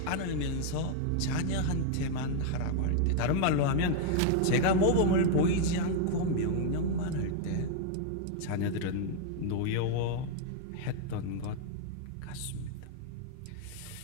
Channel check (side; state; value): both; different; correlation 0.00